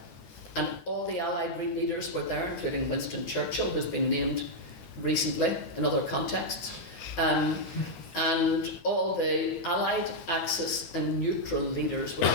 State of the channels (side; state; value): right; late; 11 ms